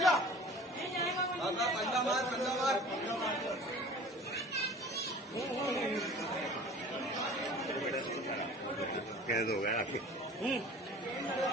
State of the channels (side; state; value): both; normal; correlation 0.44